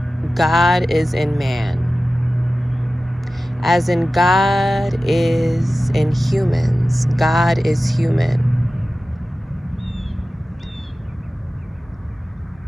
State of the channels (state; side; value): normal; both; correlation 0.95